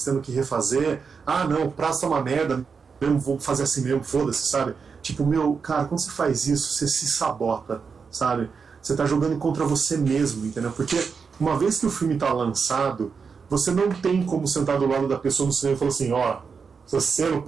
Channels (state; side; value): quieter; left; 5.6 dB